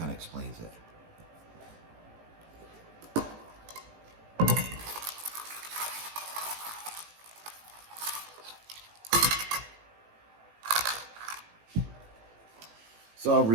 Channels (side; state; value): left; late; 18 ms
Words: of explains it. So I'll